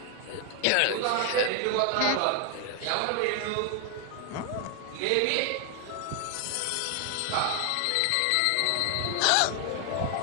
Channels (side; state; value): both; different; correlation 0.00